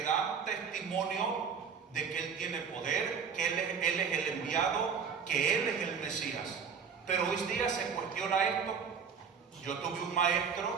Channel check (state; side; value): quieter; left; 6.4 dB